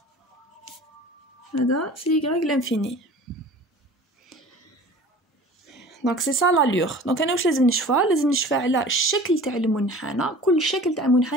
هذا c'est y l'infini. دونك سي سا لالور. دونك انا واش لازم نشوفها؟ لازم نشوفها على الشكل تاع المنحنى. كل شكل تاع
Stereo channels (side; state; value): both; normal; correlation 0.42